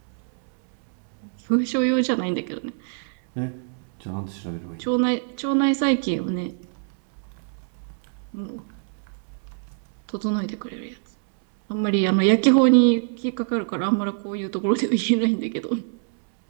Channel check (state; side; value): silent; left; 62 dB below the other